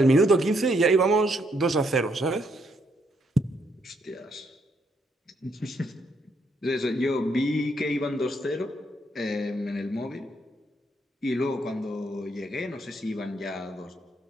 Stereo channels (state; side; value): normal; both; correlation 0.74